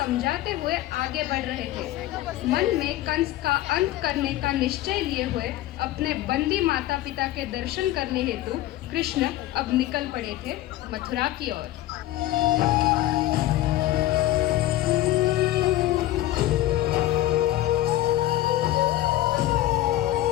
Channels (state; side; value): quieter; right; 14.9 dB